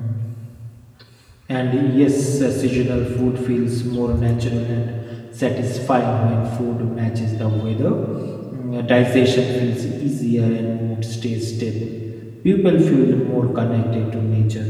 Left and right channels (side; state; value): both; identical; correlation 1.00